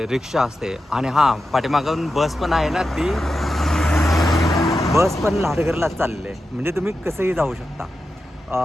रिक्षा असते आणि हां, पाठीमागून बस पण आहे ना, ती बस पण लाडगरलाच चाललेली आहे, म्हणजे तुम्ही कसंही जाऊ शकता.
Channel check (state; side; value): normal; both; correlation 0.90